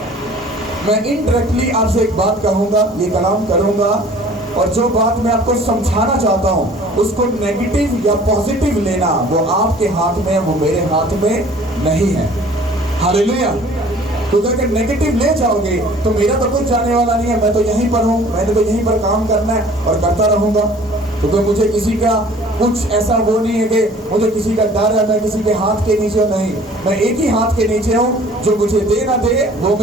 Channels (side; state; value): both; normal; correlation 0.50